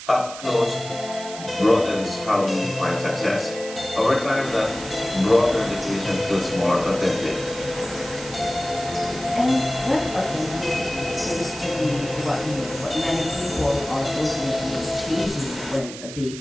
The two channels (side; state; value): right; noise; hiss, 13 dB below the sound